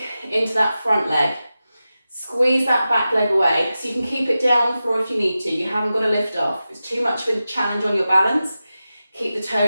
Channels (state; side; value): inverted; both; correlation -0.93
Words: into that front leg. Squeeze that back leg away, so you can keep it down on the floor if you need to. You haven't got to lift off. If it's too much of a challenge on your balance, keep the